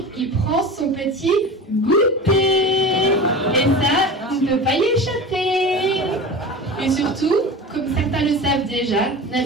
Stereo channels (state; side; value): normal; both; correlation 0.32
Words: il prend son petit goûter. Et ça, on ne peut pas y échapper. Et surtout, comme certains le savent déjà,